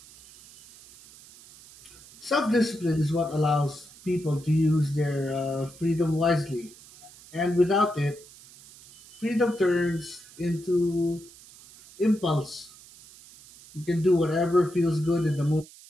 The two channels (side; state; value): right; noise; hiss, 22 dB below the sound